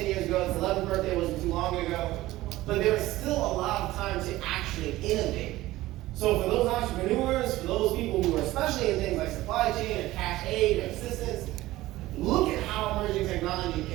years ago. Its 11th birthday wasn't too long ago. But there is still a lot of time to actually innovate. So for those entrepreneurs, for those people who are especially in things like supply chain or cash aid or assistance, look at how emerging technology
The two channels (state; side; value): quieter; left; 17.0 dB